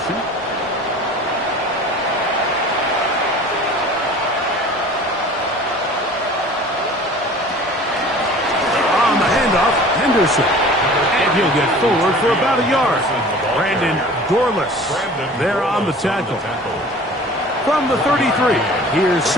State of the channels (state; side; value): normal; both; correlation 0.44